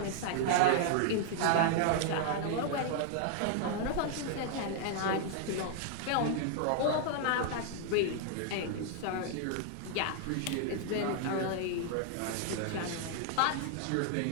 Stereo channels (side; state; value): both; different; correlation 0.00